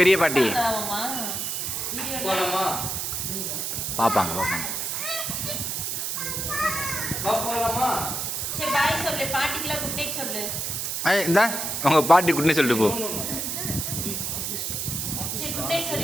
பெரிய பாட்டி போலாமா? பாப்பாங்க. போலாமா? சரி பாய் சொல்லு, பாட்டிக்குலாம் குட் நைட் சொல்லு. இந்த உங்க பாட்டி குட்னே சொல்லிட்டு போ. சரி குட் நைட்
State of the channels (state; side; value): noise; right; hiss, 2 dB below the sound